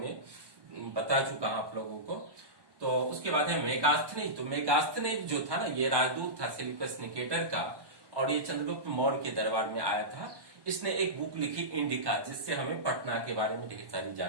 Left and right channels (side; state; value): left; late; 1.2 ms